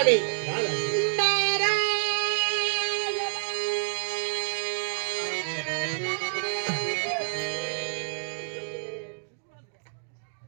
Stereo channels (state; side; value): silent; left; digital silence